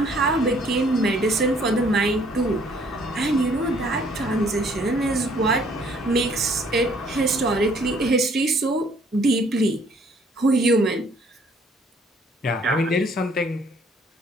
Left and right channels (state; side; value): normal; both; correlation 0.61